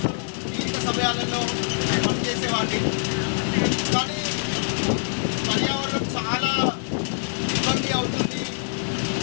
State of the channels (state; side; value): silent; right; digital silence